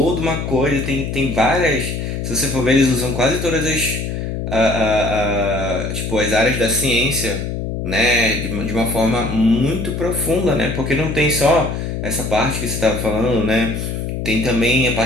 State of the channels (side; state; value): left; noise; hum, 4 dB below the sound